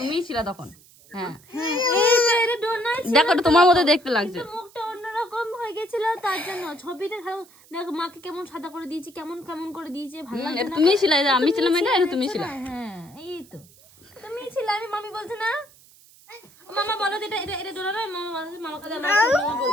ছিল তখন হ্যাঁ দেখো এটা তোমার মধ্যে দেখতে লাগছে মুখটা অন্যরকম হয়ে গেছিল তার জন্য ছবিটা দেখো মাকে কেমন সাদা করে দিয়েছি কেমন কেমন করে দিয়েছে ভালো লাগছে এটা তুমিই ছিল আমি ছিলাম এটা তুমি ছিল হ্যাঁ এই তো তুমি ছিলে আমি মামি বলছে না মামা বলো এটা এটা এটা ডোনা না মামা বলছে মামা কাছে আমরা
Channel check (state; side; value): noise; right; hiss, 26 dB below the sound